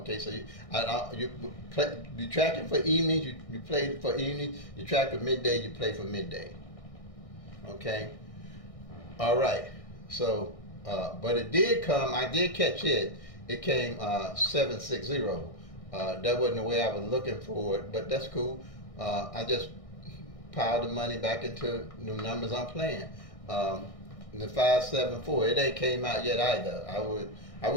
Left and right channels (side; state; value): right; late; 1.6 ms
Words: so you tracking for evenings, you play for evenings, you track for midday, you play for midday. Okay, all right. So, but it did come. I did catch it. It came 760. That wasn't the way I was looking for it, but that's cool. I just piled the money back into the numbers I'm playing. The 574, it ain't came out yet either. I